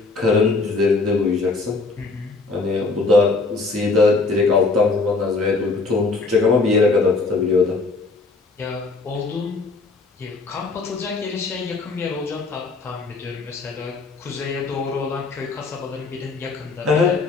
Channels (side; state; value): right; quieter; 3.9 dB